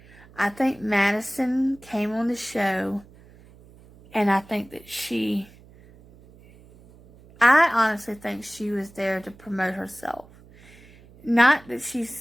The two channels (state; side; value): noise; right; hum, 24 dB below the sound